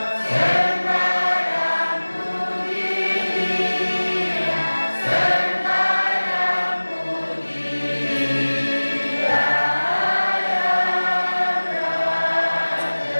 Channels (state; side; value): inverted; both; correlation -1.00